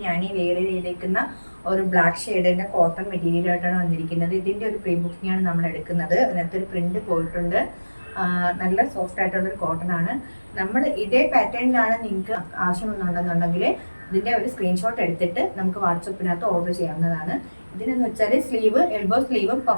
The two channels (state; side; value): inverted; both; correlation -1.00